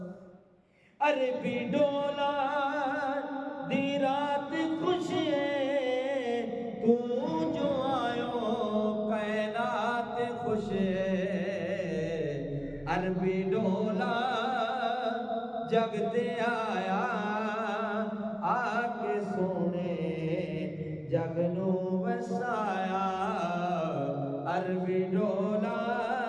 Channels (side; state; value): both; identical; correlation 1.00